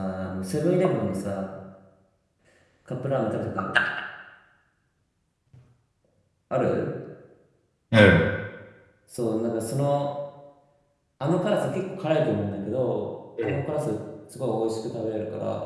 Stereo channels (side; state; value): both; identical; correlation 1.00